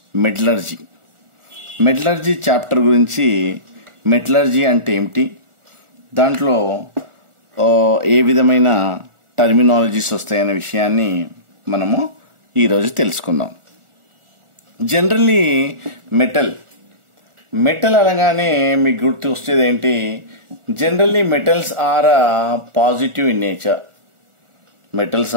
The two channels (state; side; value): late; left; 1.4 ms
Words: metallurgy chapter గురించి మెటలర్జీ అంటే ఏమిటి, దాంట్లో ఏ విధమైన టర్మినాలజీస్ వస్తాయనే విషయాన్ని మనము ఈరోజు తెలుసుకుందాం. జనరల్లీ మెటల్ అనగానే మీకు గుర్తు వచ్చేది ఏంటి? Generally metals are positive in